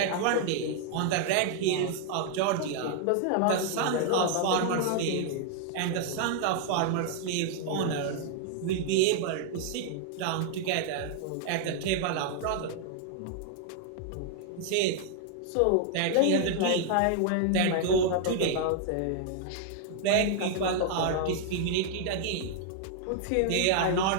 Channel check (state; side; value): different; both; correlation 0.00